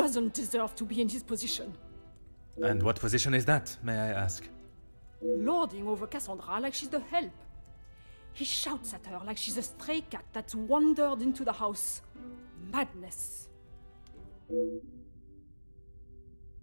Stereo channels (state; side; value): inverted; both; correlation -1.00